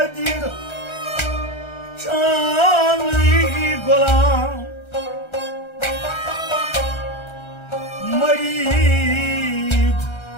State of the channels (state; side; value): late; right; 1.3 ms